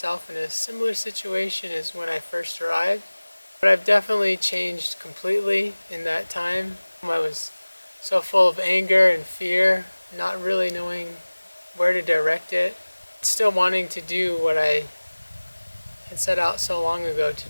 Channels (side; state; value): both; inverted; correlation -1.00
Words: in a similar situation as when I first arrived, but I've definitely changed completely in that time. I was so full of anger and fear, not really knowing where to direct it, still wanting to do what I had set out so long ago to